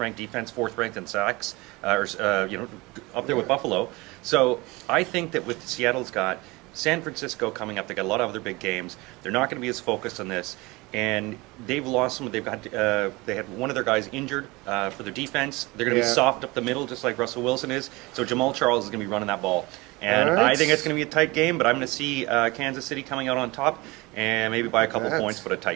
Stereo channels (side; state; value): left; quieter; 23.2 dB